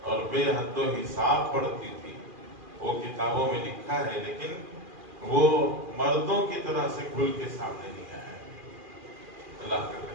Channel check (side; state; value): left; late; 2.4 ms